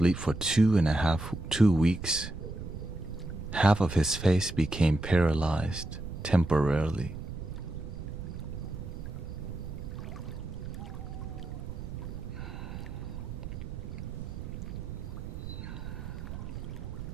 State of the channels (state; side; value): noise; right; rumble, 8 dB below the sound